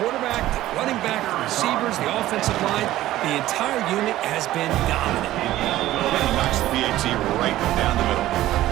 the running back, the receivers, the offensive line, the entire unit has been dominant. Well, he knocks the PAT right down the middle.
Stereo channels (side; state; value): left; quieter; 14.9 dB